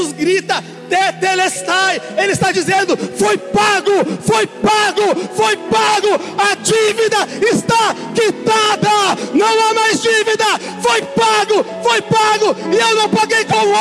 grita Tetelestai, Ele está dizendo: foi pago, foi pago, foi pago. A dívida está quitada, não há mais dívida. Foi pago, foi pago. E eu não paguei com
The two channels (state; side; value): identical; both; correlation 1.00